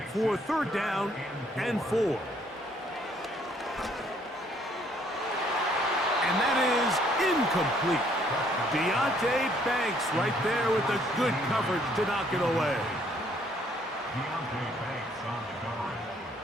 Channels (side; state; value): both; normal; correlation 0.65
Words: for 3rd down and 4. And that is incomplete. Deontay Banks right there with the good coverage to knock it away.